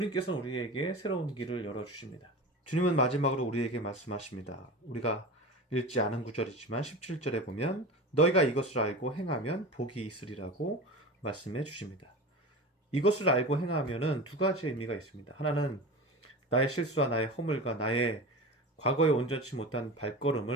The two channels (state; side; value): normal; both; correlation 0.30